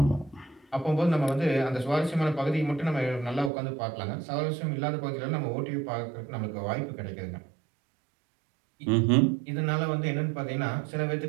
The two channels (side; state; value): left; drops out; at 3.5 s